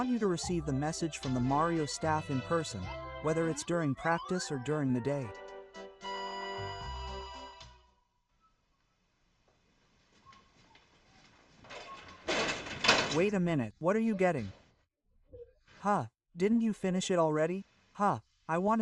you to receive the message from the Mario staff in person, whether it's during practice or during the day. Wait a minute, what are you getting? Huh, didn't you finish it already? Huh, I want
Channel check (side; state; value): both; identical; correlation 1.00